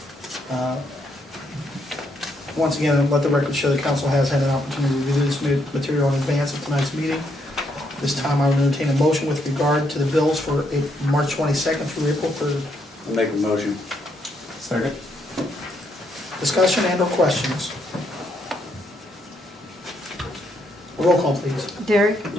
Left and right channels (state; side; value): normal; both; correlation 0.75